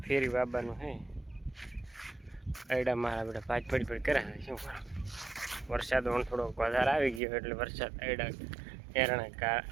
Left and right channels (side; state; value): left; drops out; at 7.2 s